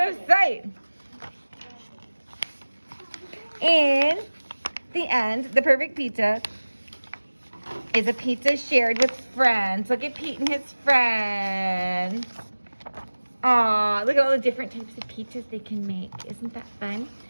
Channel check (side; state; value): both; inverted; correlation -1.00